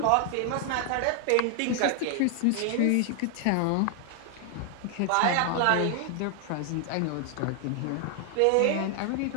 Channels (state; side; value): different; both; correlation 0.00